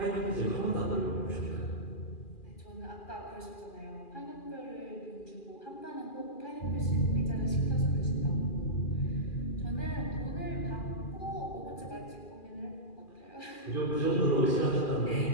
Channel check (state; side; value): late; right; 2.4 ms